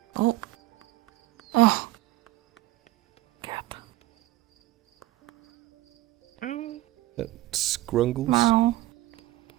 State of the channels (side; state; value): left; quieter; 16.7 dB